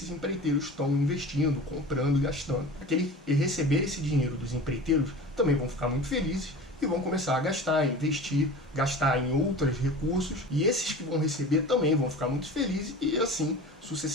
empreiteiros estão investindo, comprando e gastando. Aqueles que receber esse dinheiro dos empreiteiros também vão ficar muito felizes e vão começar a gastar, investir, gastar em outros recursos, e esses que vão receber também vão ficar muito felizes, e assim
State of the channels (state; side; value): normal; both; correlation 0.36